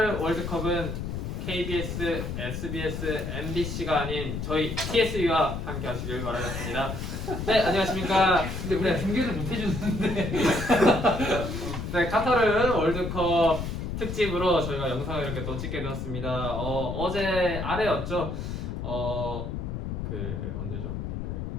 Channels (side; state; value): left; noise; rumble, 4 dB below the sound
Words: 월드컵은 KBS, SBS, MBC가 아닌 저희 TSU와 함께 하시길 바라겠습니다. 네, 안녕하십니까. 근데 우리가 중계를 못 해주는데. 네, 카타르 월드컵 특집으로 저희가 영상을 이렇게 또 찍게 되었습니다. 어제 아래였죠. 언제죠?